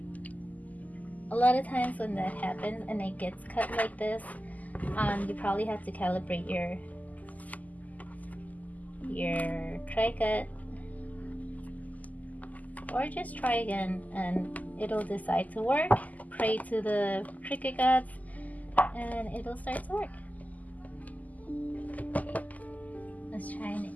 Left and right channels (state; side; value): late; right; 0.078 ms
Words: and it gets cut like this, you probably have to calibrate your cricut, or just try again and it'll decide to work. Pray to the Cricut gods and it'll start to work. Let's try